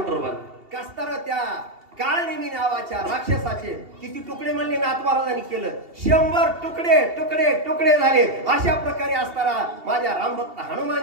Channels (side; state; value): left; late; 2.8 ms